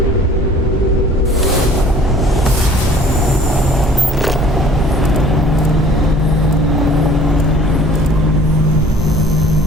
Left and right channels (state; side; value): normal; both; correlation 0.52